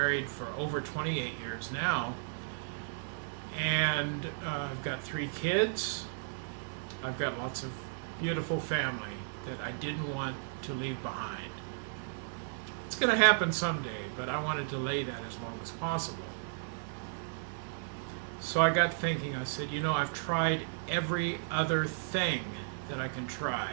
for over 28 years now. And I've got 3 kids. I've got lots of beautiful family that I didn't want to leave behind. It's going to happen someday, but I want to delay that as long as possible. So I got thinking, I said, I've tried every other thing that I can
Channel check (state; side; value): silent; left; 55 dB below the other